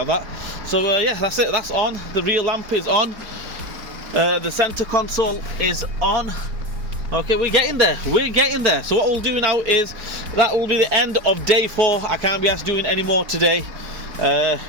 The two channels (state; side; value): late; left; 4.4 ms